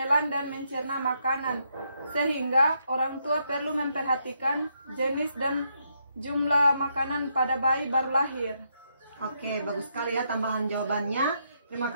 dan mencerna makanan, sehingga orang tua perlu memperhatikan jenis dan jumlah makanan pada bayi baru lahir. Oke, bagus sekali ya tambahan jawabannya. Terima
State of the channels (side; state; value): both; inverted; correlation -0.77